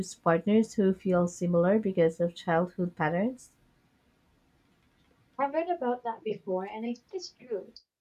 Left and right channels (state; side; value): identical; both; correlation 1.00